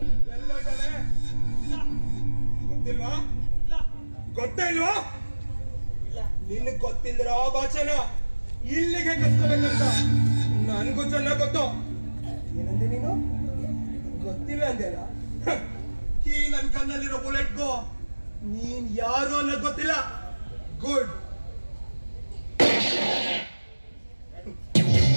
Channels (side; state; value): both; inverted; correlation -1.00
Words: ಗೊತ್ತಿಲ್ವಾ? ಗೊತ್ತೇ ಇಲ್ವಾ? ನಿನಗ್ ಗೊತ್ತಿಲ್ದಿರೋ ಭಾಷೆನ ಇಲ್ಲಿಗೆ ಕಸ್ಕೋಬೇಕಂತ ನನ್ಗೂ ಚೆನ್ನಾಗ್ ಗೊತ್ತು. ಏನಂದೆ ನೀನು? ಗೊತ್ತಿಲ್ಲ ಅಂದೇನ? ಈ ನನ್ ಕಣ್ಣಲ್ಲಿರೋ ಬುಲೆಟ್ಗೂ ನೀನ್ ಯಾರು ಅನ್ನೋದು ಗೊತ್ತಿಲ್ಲ. ಗುಡ್.